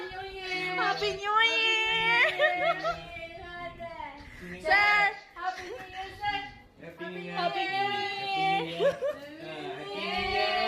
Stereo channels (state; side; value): identical; both; correlation 1.00